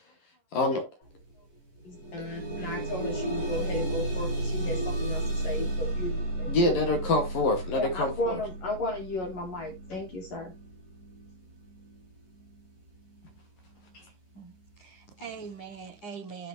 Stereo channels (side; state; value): right; late; 11 ms